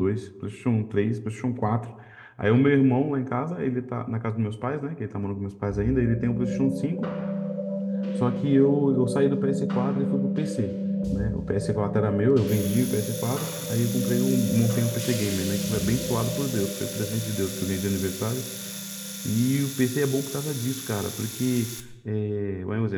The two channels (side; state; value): both; identical; correlation 1.00